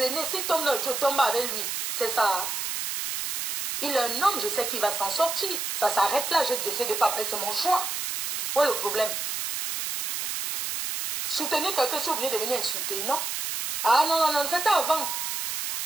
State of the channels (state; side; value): noise; right; hiss, 3 dB below the sound